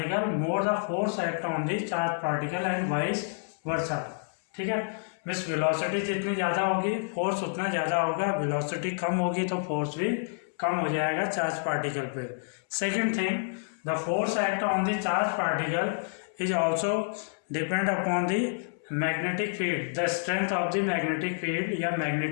more the force act on the charged particle and vice versa, ठीक है। मिस वेलोसिटी जितनी ज़्यादा होगी फोर्स उतना ज़्यादा होगा, वेलोसिटी कम होगी तो फोर्स भी कम हो जाएगा चार्ज पार्टिकल पे। Second thing, the force act on the charge particle is also depend upon the magnetic field, the strength of the magnetic field या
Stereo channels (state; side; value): silent; right; 59 dB below the other